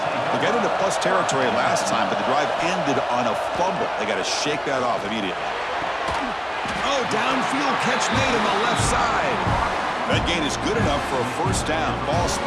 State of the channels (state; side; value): identical; both; correlation 1.00